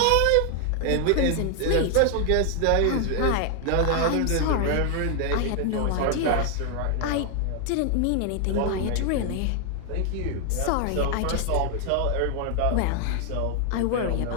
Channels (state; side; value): different; both; correlation 0.00